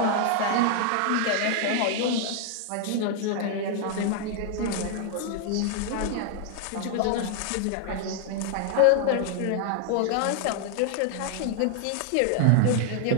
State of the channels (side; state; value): both; different; correlation 0.00